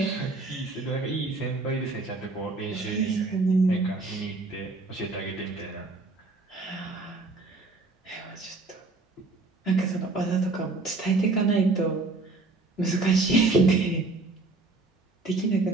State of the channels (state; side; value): quieter; left; 3.4 dB